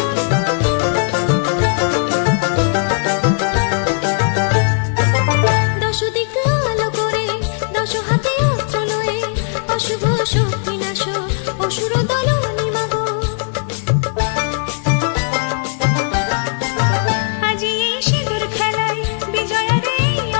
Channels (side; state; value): right; silent; digital silence